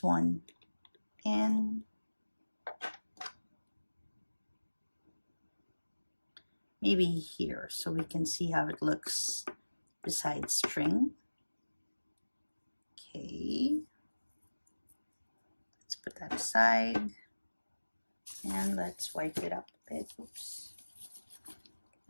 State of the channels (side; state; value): both; inverted; correlation -1.00